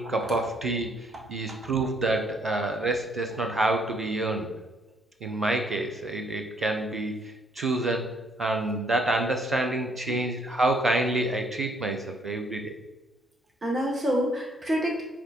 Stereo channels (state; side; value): normal; both; correlation 0.67